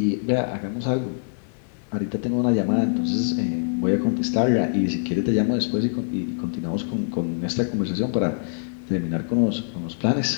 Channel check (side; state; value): right; silent; digital silence